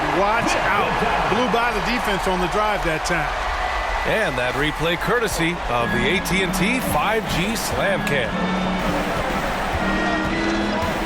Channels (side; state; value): both; identical; correlation 1.00